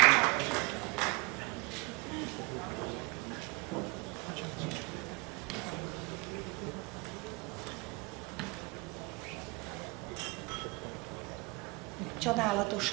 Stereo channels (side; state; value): left; quieter; 26.7 dB